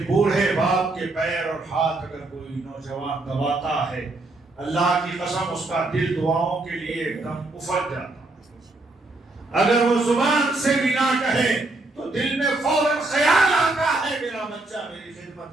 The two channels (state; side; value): quieter; left; 3.0 dB